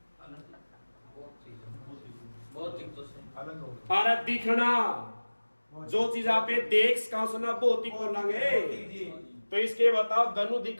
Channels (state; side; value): inverted; both; correlation -1.00